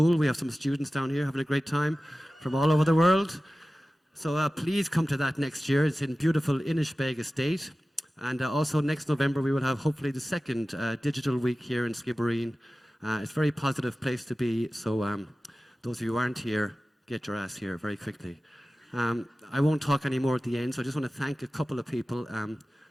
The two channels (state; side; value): normal; both; correlation 0.96